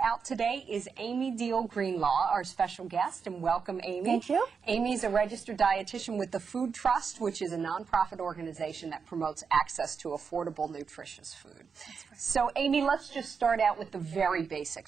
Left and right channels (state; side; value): quieter; left; 5.8 dB